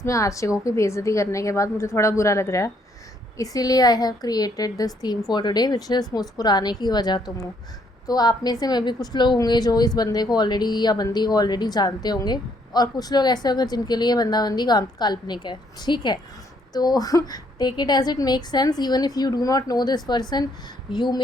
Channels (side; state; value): both; normal; correlation 0.69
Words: में आशिकों की बेइज्जती करने के बाद मुझे थोड़ा बुरा लग रहा है, इसीलिए I have created this theme for today which is मुस्कुराने की वजह तुम हो। तो आप में से में भी कुछ लोग होंगे जो इस बंदे को ऑलरेडी या बंदी को ऑलरेडी जानते होंगे, और कुछ लोग ऐसे होंगे जिनके लिए बंदा बंदी काल्पनिक है। ठीक है, तो take it as it make sense. Even if you do not know this person, you